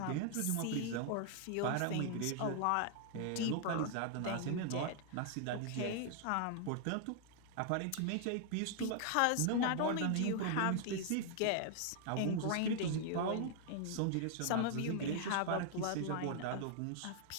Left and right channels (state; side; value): different; both; correlation 0.00